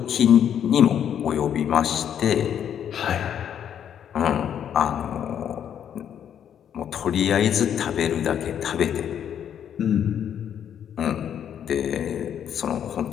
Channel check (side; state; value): right; quieter; 9.2 dB